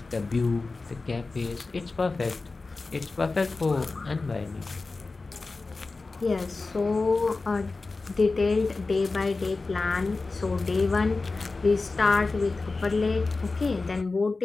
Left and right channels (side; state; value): right; quieter; 3.7 dB